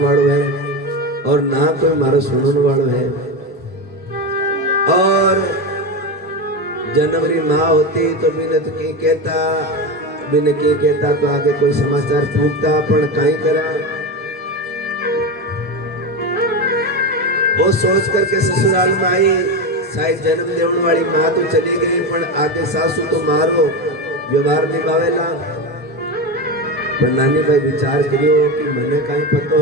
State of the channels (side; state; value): both; normal; correlation 0.18